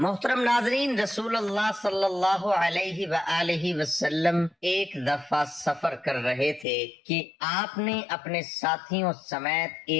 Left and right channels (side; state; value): right; drops out; at 6.7 s